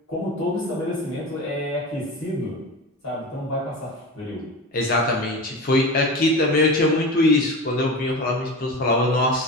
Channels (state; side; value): normal; both; correlation 0.28